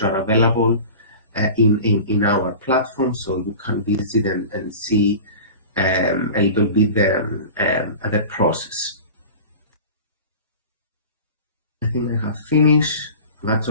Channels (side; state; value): both; inverted; correlation -0.36